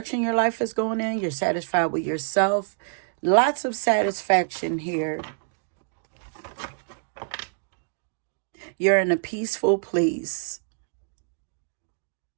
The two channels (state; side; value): silent; left; digital silence